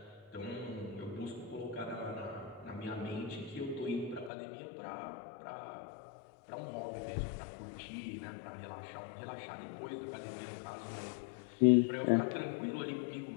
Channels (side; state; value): right; drops out; at 4.3 s